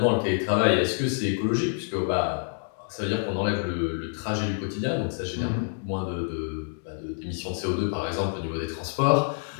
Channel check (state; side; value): silent; right; 60 dB below the other